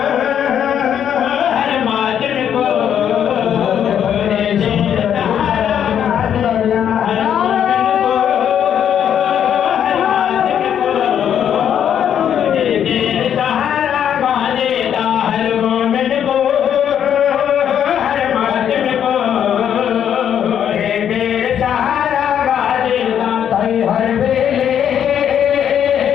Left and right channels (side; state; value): right; quieter; 9.2 dB